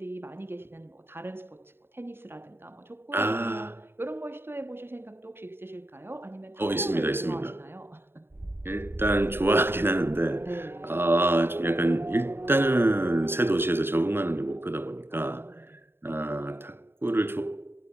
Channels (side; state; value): left; late; 0.11 ms